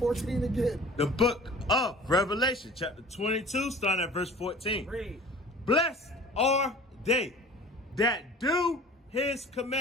again. The book of Revelation, chapter 22, starting at verse 14. Read. Blessed are they that do his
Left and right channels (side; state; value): both; normal; correlation 0.44